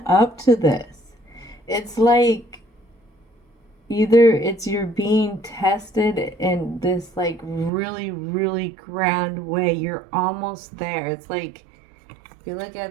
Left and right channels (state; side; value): drops out; left; at 7.7 s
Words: up to this. It's like either it's you're being tested in this like really, really grand way. You're almost there. It's like, if you look